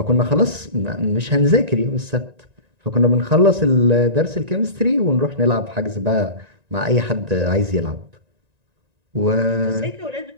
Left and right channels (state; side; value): late; left; 1.9 ms